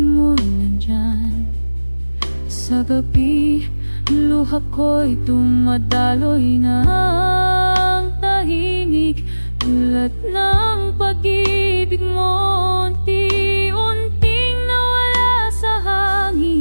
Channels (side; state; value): both; inverted; correlation -1.00